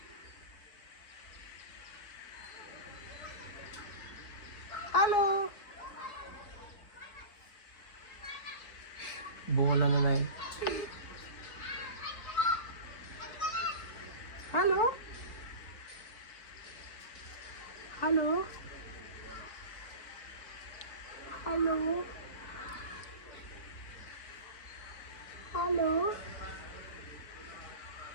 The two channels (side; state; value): right; late; 4.4 ms